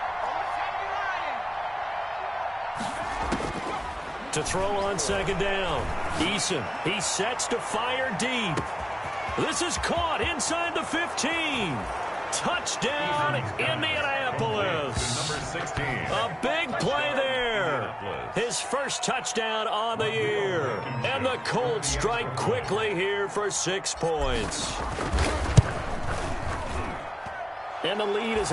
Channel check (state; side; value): identical; both; correlation 1.00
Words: To throw on second down. Eason, he sets to fire deep. This is caught inside the 15. Touchdown, Indianapolis. Number 16. A big play there. His first touchdown on the year. And the Colts strike quickly here for 6 points. And the lead is